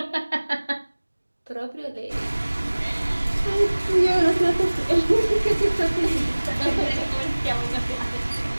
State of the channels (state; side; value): inverted; both; correlation -1.00